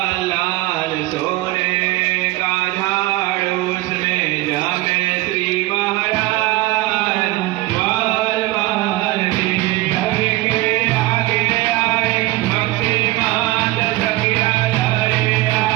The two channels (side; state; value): left; quieter; 19.1 dB